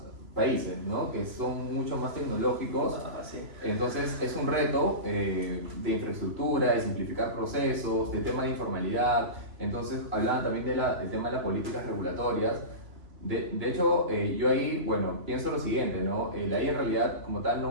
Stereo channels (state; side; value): late; left; 3.0 ms